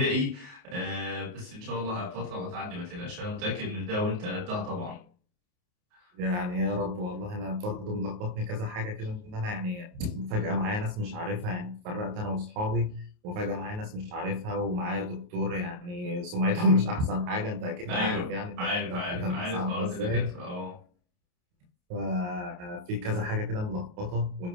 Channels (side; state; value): left; late; 28 ms